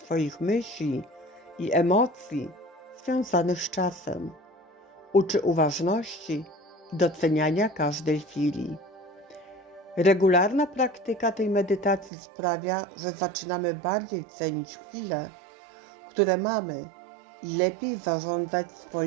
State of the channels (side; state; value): left; drops out; at 12.1 s